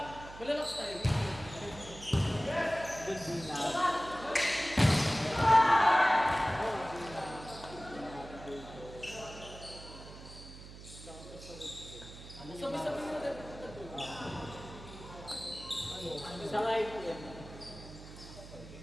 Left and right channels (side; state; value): right; noise; hum, 15 dB below the sound